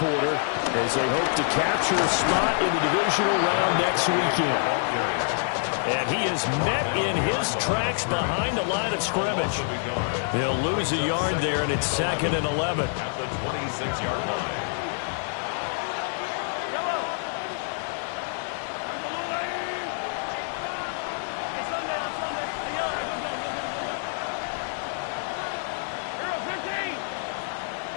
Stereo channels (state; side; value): silent; right; 60 dB below the other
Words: as they hope to capture a spot in the divisional round next weekend. And he is met in his tracks behind the line of scrimmage. He'll lose a yard there, and it's 2nd and 11. At the 26-yard line.